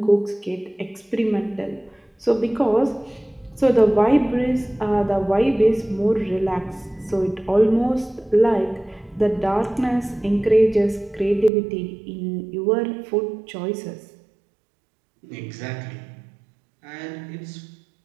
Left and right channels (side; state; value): left; drops out; at 11.5 s